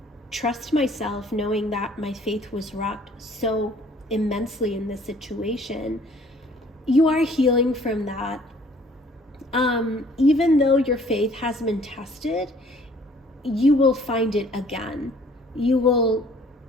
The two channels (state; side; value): normal; both; correlation 0.56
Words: trust myself, knowing that my faith was rocked so immensely in this situation? You are healing from that. Even though your faith has been tested, you will find it again. You will